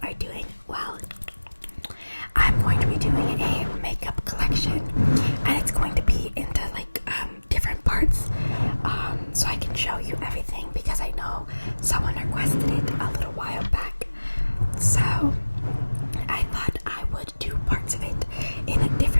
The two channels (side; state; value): both; inverted; correlation -1.00